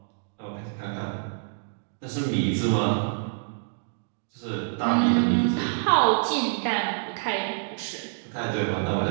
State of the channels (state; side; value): silent; left; 60 dB below the other